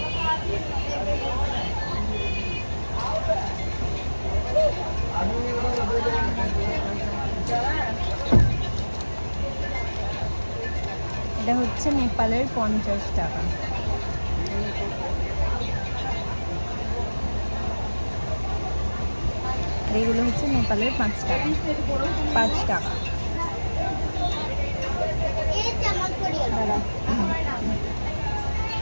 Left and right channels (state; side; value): inverted; both; correlation -1.00